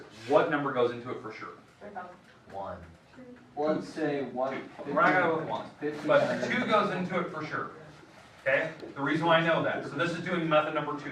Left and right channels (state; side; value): identical; both; correlation 1.00